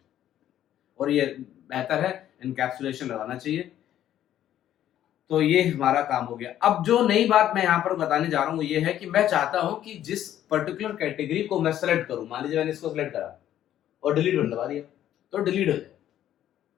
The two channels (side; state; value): right; quieter; 11.6 dB